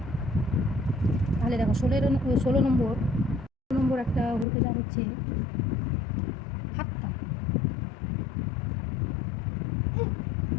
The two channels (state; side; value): drops out; right; at 4.5 s